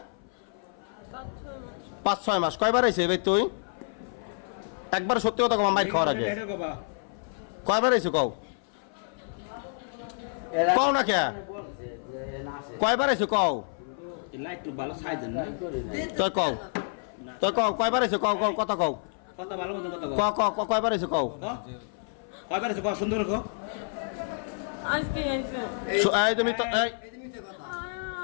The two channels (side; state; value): right; silent; 55 dB below the other